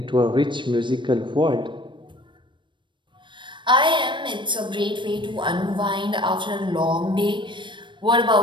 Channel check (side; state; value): left; late; 0.23 ms